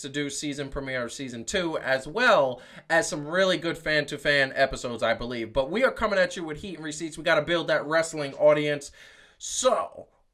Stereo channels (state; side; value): identical; both; correlation 1.00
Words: Do season premiere of season 2, as well as some really good fan-to-fan episodes, I believe. But we are coming at you with Heat and Receipts. We got to build that wrestling audience. So,